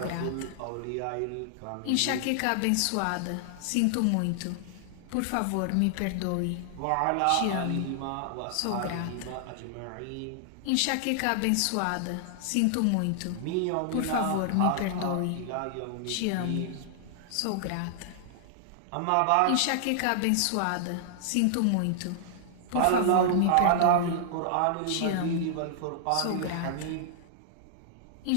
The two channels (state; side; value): different; both; correlation -0.01